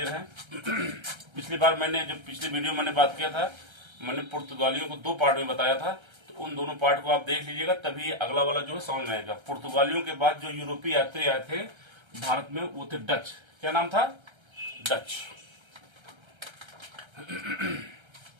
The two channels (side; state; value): left; late; 1.3 ms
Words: हैं। पिछली बार पिछली वीडियो मैंने बात किया था, मैंने पुर्तगालियों को दो पार्ट में बताया था, तो उन दोनों पार्ट को आप देख लीजिएगा, तभी अगला वाला जो है समझ में आएगा। पुर्तगालियों के बाद जो यूरोपीय यात्री आए थे भारत में वो थे डच। क्या नाम था? डच।